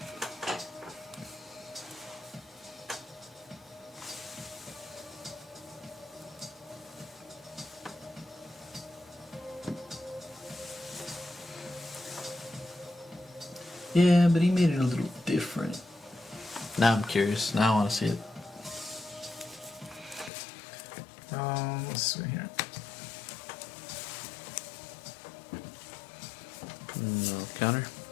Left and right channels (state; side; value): drops out; right; at 20.3 s